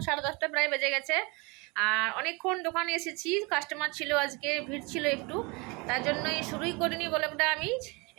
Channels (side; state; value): left; quieter; 28.0 dB